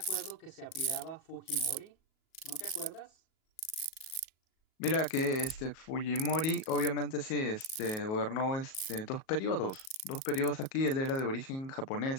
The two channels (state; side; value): late; right; 37 ms